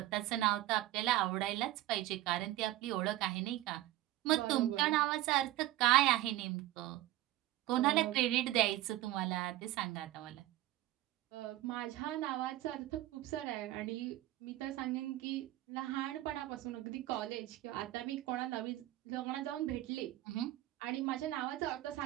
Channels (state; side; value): quieter; left; 15.5 dB